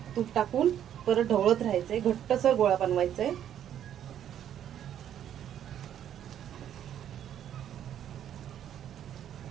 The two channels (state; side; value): quieter; left; 10.2 dB